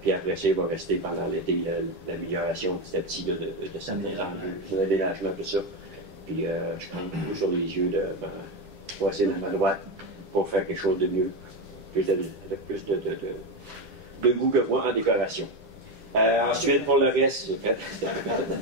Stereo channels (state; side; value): late; left; 9.8 ms